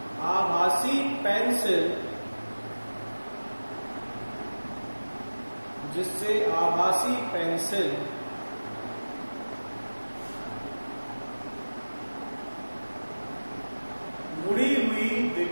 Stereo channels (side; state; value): both; inverted; correlation -1.00